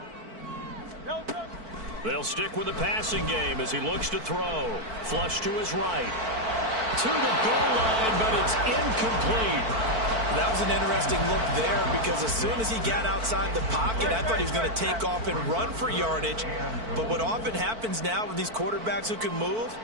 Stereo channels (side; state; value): left; late; 4.5 ms